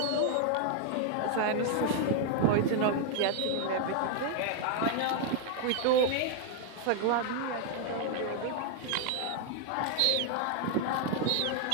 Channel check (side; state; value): both; different; correlation 0.00